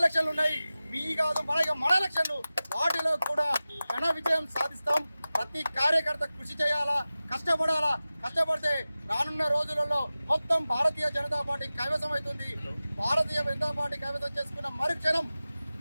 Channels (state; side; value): inverted; both; correlation -0.96